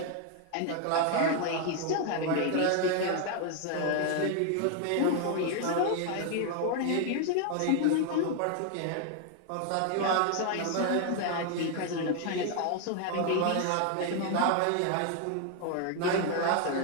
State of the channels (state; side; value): different; both; correlation 0.00